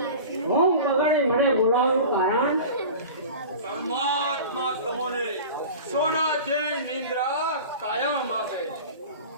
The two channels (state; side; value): inverted; both; correlation -0.36